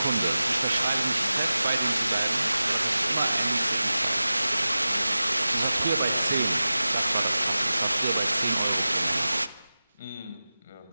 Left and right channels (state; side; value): inverted; both; correlation -0.95